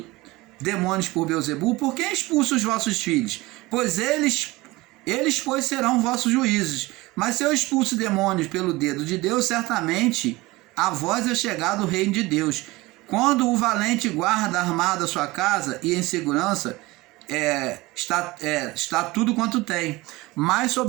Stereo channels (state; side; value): quieter; left; 20.8 dB